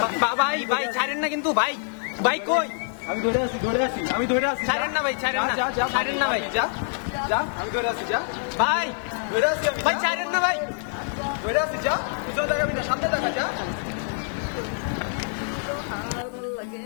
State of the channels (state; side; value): silent; right; 61 dB below the other